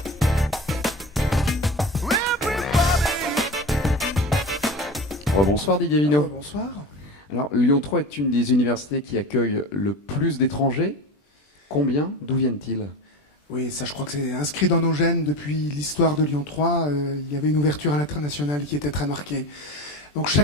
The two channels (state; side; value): normal; both; correlation 0.29